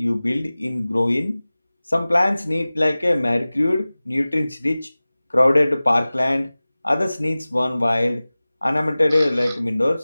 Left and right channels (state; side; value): inverted; both; correlation -0.98